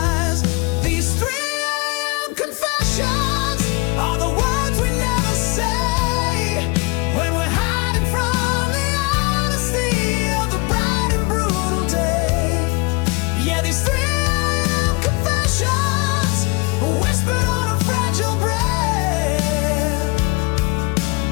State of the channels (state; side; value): quieter; right; 26.5 dB